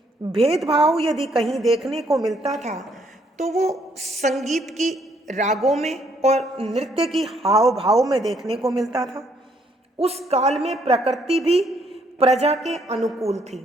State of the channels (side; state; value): both; normal; correlation 0.69